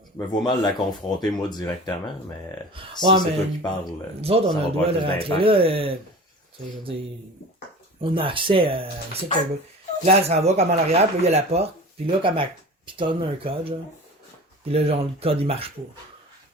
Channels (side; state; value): both; normal; correlation 0.37